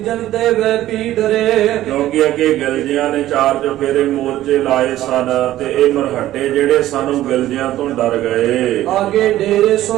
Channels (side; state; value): left; quieter; 14.1 dB